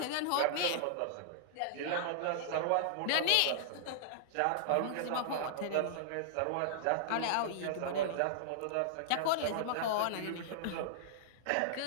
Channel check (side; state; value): both; different; correlation -0.01